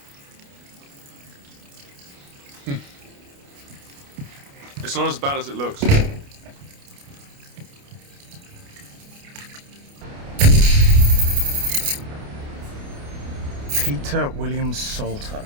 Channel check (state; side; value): late; left; 29 ms